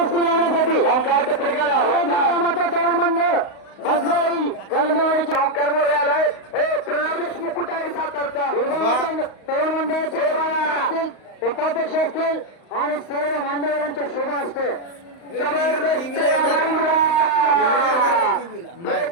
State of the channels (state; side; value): late; right; 35 ms